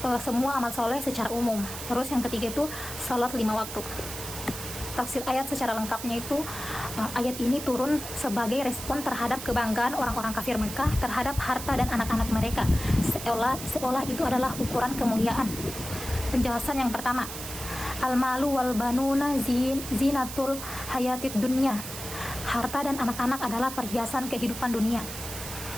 semua amal soleh secara umum. Terus yang ketiga itu salat 5 waktu. Tafsir ayat secara lengkapnya itu ayat ini turun sebagai respon terhadap kebanggaan orang-orang kafir Mekah terhadap harta dan anak-anak mereka, seolah itu adalah ukuran kemuliaan. Penjelasan yang pertama, al-malu wal banuna zinatul hayatid dunya. Harta dan anak-anak adalah perhiasan kehidupan dunia.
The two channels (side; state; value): right; noise; hiss, 9 dB below the sound